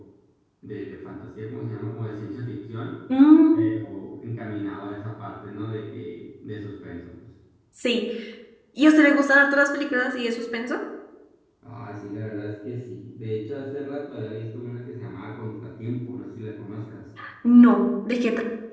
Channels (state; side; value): identical; both; correlation 1.00